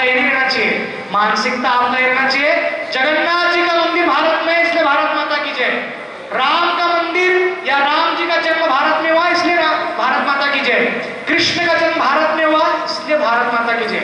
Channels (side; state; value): both; identical; correlation 1.00